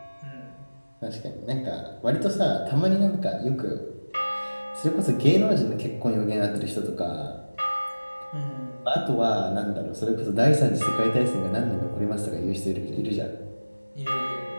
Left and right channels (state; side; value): inverted; both; correlation -1.00